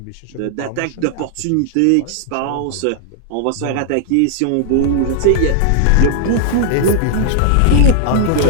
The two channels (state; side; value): different; both; correlation -0.01